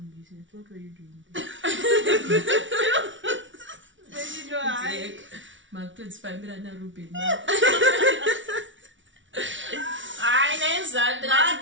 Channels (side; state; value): left; late; 0.56 ms